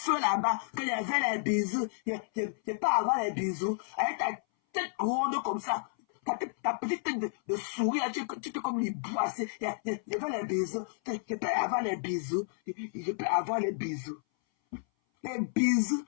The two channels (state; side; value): silent; right; 57 dB below the other